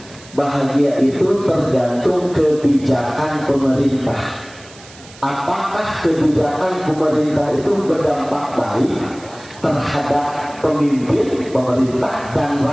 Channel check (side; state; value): right; noise; hiss, 21 dB below the sound